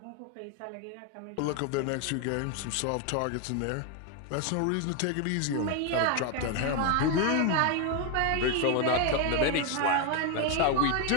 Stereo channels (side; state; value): both; different; correlation 0.01